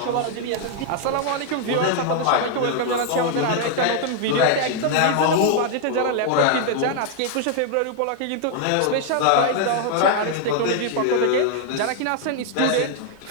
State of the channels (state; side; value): different; both; correlation 0.00